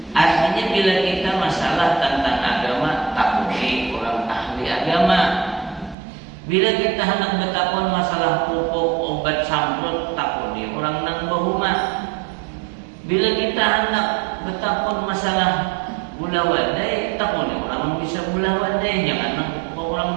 Artinya bila kita masalah tentang agama, takuni orang ahli agama. Bila kita hendak bertakun masalah pupuk, obat samprot, takuni orang nang bahuma. Bila kita hendak bertakun masalah bulah wadai, takuni orang bisa bulah wadai, jangan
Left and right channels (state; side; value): drops out; left; at 6.0 s